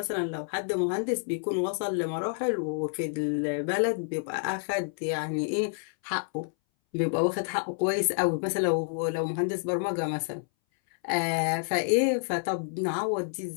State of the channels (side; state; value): right; silent; 59 dB below the other